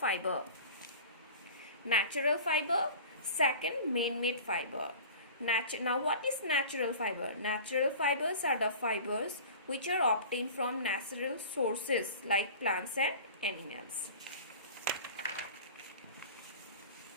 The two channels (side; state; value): both; inverted; correlation -0.40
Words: natural fiber, second man-made fiber. Now what is natural fiber? Natural fibers are the fibers which are obtained from natural sources like plants and animals.